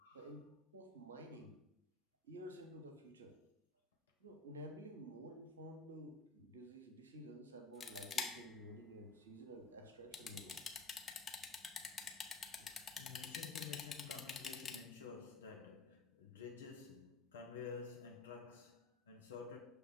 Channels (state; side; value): quieter; right; 3.6 dB